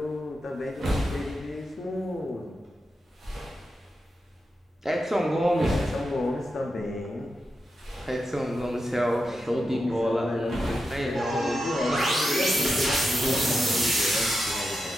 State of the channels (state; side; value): normal; both; correlation 0.88